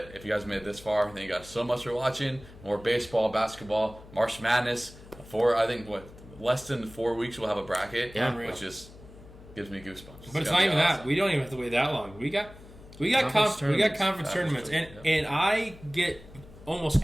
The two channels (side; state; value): left; noise; hum, 19 dB below the sound